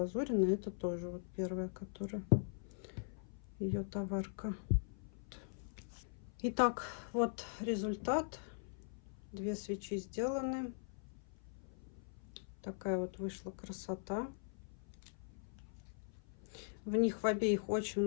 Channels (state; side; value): silent; right; 50 dB below the other